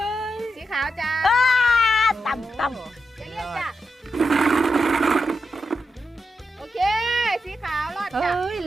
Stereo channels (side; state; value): both; normal; correlation 0.87